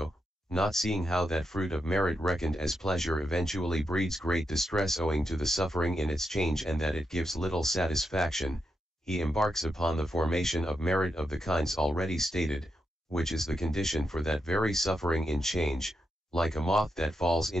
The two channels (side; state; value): both; normal; correlation 0.84